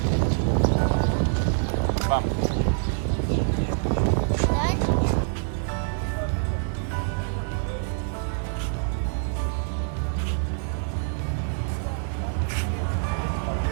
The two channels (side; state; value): left; silent; digital silence